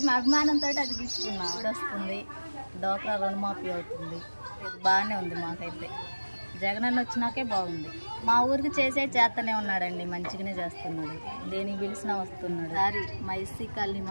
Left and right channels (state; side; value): inverted; both; correlation -1.00